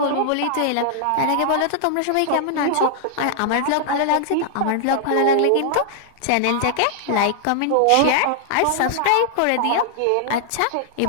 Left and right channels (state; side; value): different; both; correlation -0.01